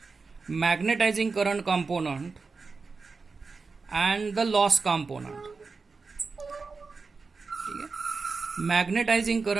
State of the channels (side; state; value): left; quieter; 4.4 dB